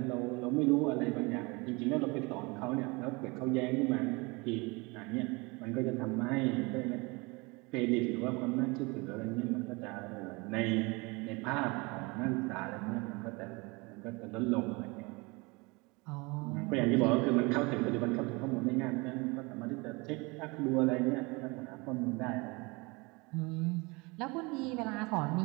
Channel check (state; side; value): quieter; left; 26.6 dB